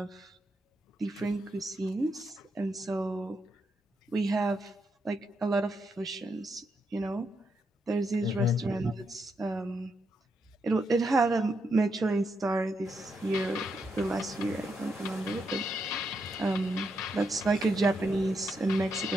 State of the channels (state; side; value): normal; both; correlation 0.81